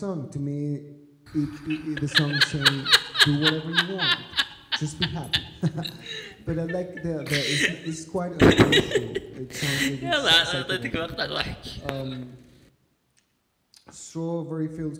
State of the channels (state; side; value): identical; both; correlation 1.00